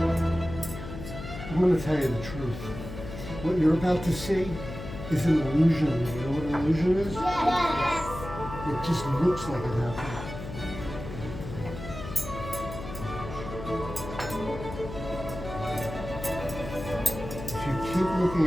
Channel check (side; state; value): left; noise; hum, 10 dB below the sound